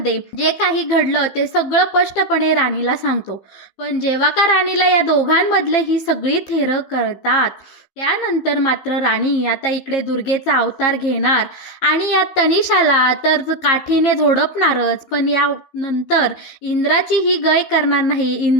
जे काही घडलं ते सगळं स्पष्टपणे राणीला सांगतो. पण जेव्हा का राणीला या दोघांमधले ही सगळी थेरं कळतात, त्यानंतर मात्र राणी आता इकडे दुर्गेचा अवतार घेणार आणि या तनिषाला तर काठीने झोडपणारच. पण यानंतर इंद्राची ही गय करणार नाही.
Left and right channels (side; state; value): right; late; 15 ms